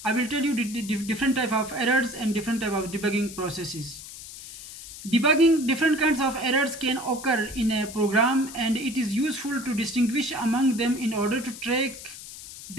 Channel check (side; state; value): left; noise; hiss, 13 dB below the sound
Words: I will tell you different type of errors and different type of debugging processes. Debugging different kinds of errors can occur in a program, and it is useful to distinguish among them in order to track